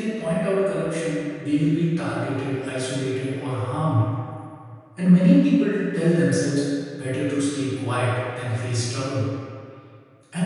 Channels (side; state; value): both; identical; correlation 1.00